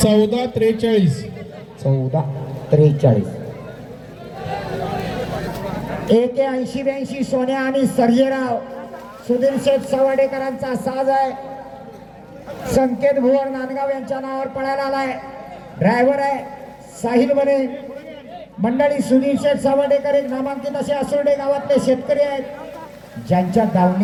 14-43. 14-43. 81-82 सोन्या आणि सर्जेराव सुधीर शेठ सवाडेकरांचा साज आहे. संकेत भुवन नांदगाव यांच्या नावावर पळायला आलाय. ड्रायव्हर आहे साहिल बने. मंडळी सुधीर शेठ सवाडेकर एक नामांकित असे असुर्डे गावातले शेतकरी आहेत, ज्यांच्या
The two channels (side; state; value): both; identical; correlation 1.00